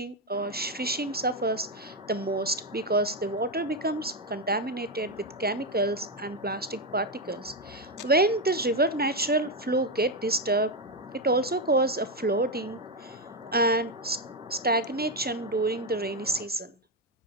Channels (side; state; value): both; normal; correlation 0.07